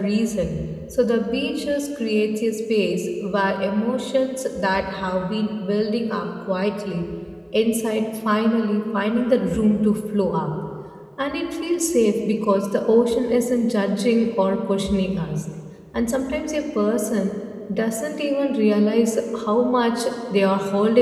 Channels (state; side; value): identical; both; correlation 1.00